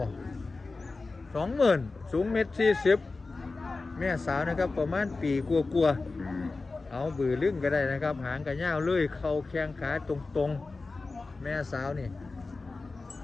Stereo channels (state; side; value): quieter; right; 3.7 dB